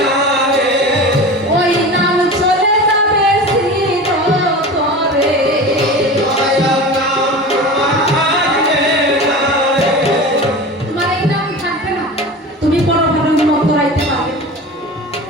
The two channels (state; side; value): normal; both; correlation 0.32